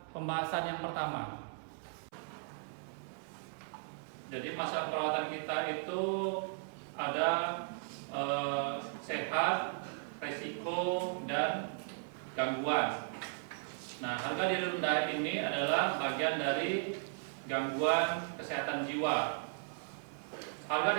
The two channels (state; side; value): silent; left; 53 dB below the other